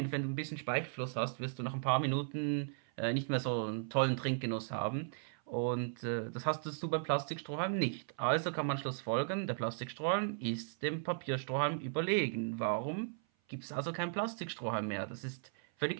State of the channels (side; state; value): left; silent; 53 dB below the other